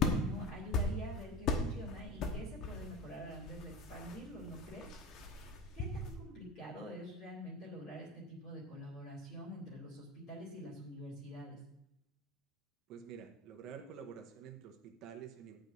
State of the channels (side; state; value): both; normal; correlation 0.30